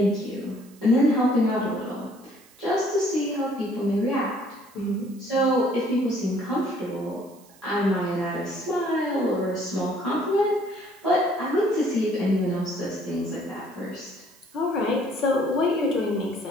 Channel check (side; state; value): right; noise; hiss, 27 dB below the sound